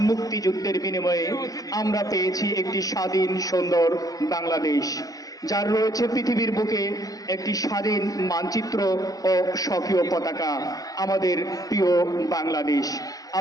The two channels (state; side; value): late; right; 0.17 ms